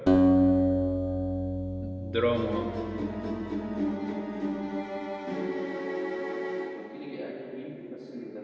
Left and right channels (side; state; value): both; identical; correlation 1.00